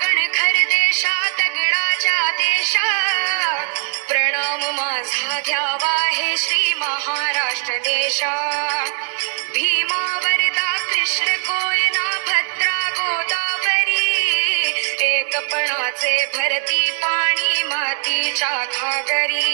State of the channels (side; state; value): left; silent; digital silence